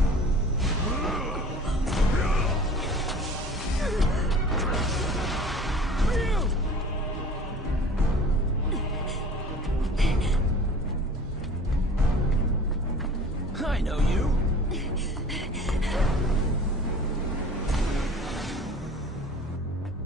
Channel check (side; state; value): both; normal; correlation 0.45